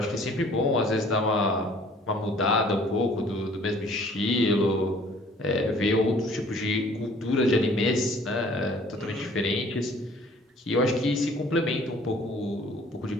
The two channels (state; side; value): normal; both; correlation 0.55